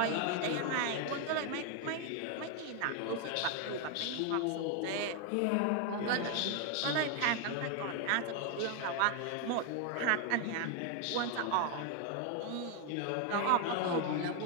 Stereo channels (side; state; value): both; different; correlation 0.01